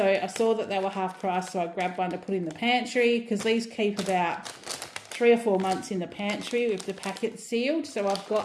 I saw that they were half price, so I grabbed one to put in the pantry because these keep about 3 or 4 months in the pantry with the packet sealed. So I've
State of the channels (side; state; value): both; identical; correlation 1.00